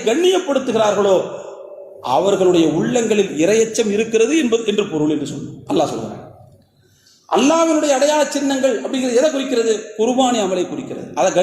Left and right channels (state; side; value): identical; both; correlation 1.00